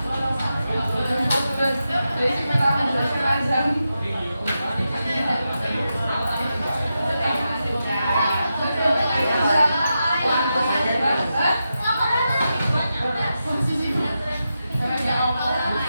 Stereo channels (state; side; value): inverted; both; correlation -0.89